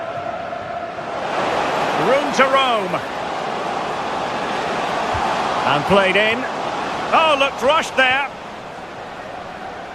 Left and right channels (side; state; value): both; identical; correlation 1.00